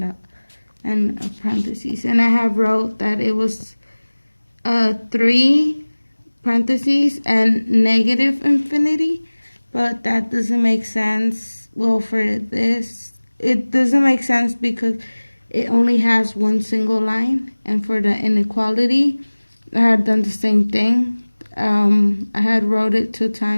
dot and a parentheses. And I have wrote that it was 3 parentheses and negative infinity, but that doesn't make sense. Well, for this, it doesn't make sense because it only has one single line. And for the inequality, I had done the same thing. I had wrote it 2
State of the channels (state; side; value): inverted; both; correlation -1.00